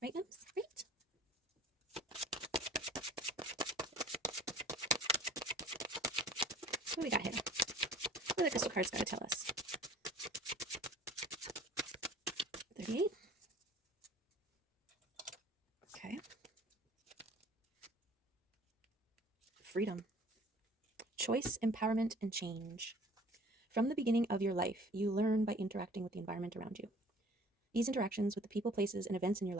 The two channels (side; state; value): both; normal; correlation 0.49